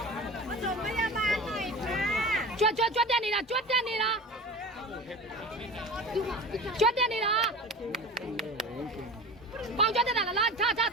မတော်မရပါနိုင်ကြွတက်နေတာကြွတက်နေတာပေါင်ကြတက်တာလားထာ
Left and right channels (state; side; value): normal; both; correlation 0.33